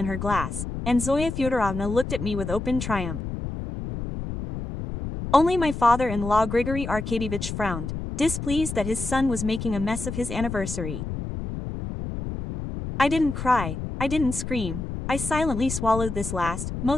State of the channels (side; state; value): left; noise; rumble, 6 dB below the sound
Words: her glass, and Zoya Fyodorovna looked at me with open triumph. Only my father-in-law Grigory Arkadyevich frowned, displeased that his son was making a mess of his anniversary. I didn't cry, I didn't scream, I silently swallowed this last,